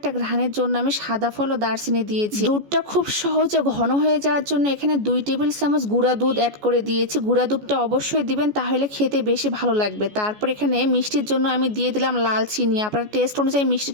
ঘ্রাণের জন্য আমি সাদা ফল ও দারচিনি দিয়েছি। দুধটা খুব সহজে ঘন হয়ে যাওয়ার জন্য এখানে 2 টেবিল চামচ গুঁড়া দুধ অ্যাড করে দিয়েছি। গুঁড়া দুধটা অবশ্যই দিবেন, তাহলে খেতে বেশি ভালো লাগবে। তারপর এখানে মিষ্টির জন্য আমি দিয়ে দিলাম লাল চিনি। আপনার টেস্ট অনুযায়ী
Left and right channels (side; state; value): left; late; 14 ms